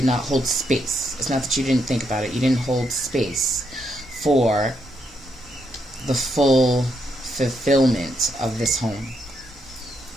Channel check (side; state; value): both; normal; correlation 0.79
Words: not hold space. It's not that you didn't think about it. You didn't hold space for the full fulfillment of this home.